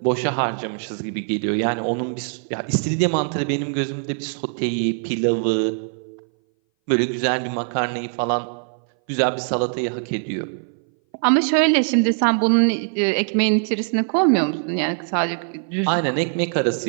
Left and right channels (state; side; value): silent; left; 60 dB below the other